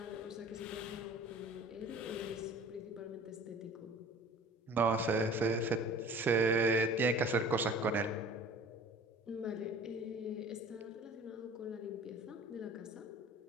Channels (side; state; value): both; normal; correlation 0.45